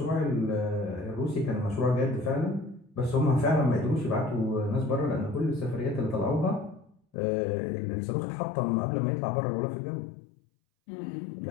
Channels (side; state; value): right; drops out; at 7.0 s